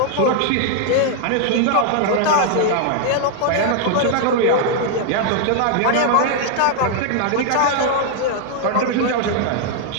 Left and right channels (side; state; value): both; different; correlation 0.00